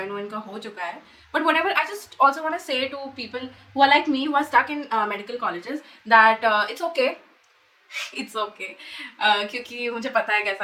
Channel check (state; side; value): identical; both; correlation 1.00